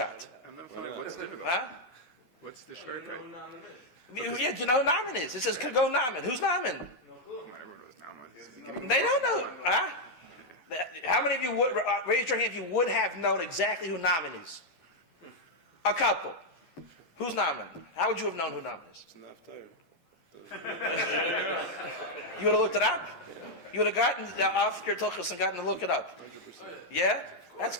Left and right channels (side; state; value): right; late; 12 ms